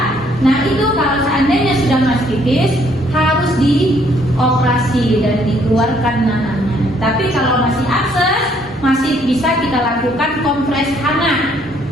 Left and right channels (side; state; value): both; normal; correlation 0.66